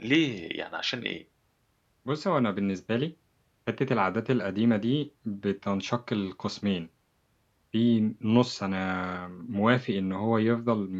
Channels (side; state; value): both; identical; correlation 1.00